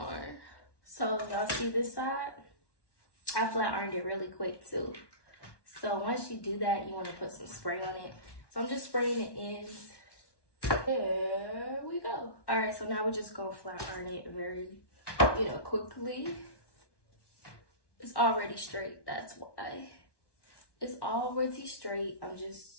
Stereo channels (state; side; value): late; right; 1.1 ms